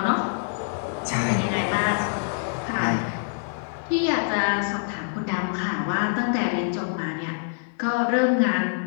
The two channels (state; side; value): silent; right; digital silence